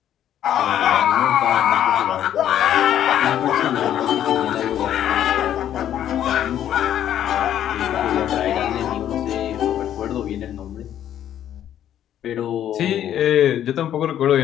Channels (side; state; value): right; quieter; 10.8 dB